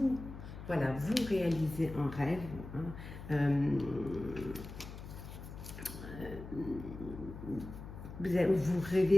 voilà, vous réalisez un rêve. Vous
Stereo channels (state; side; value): noise; left; hum, 11 dB below the sound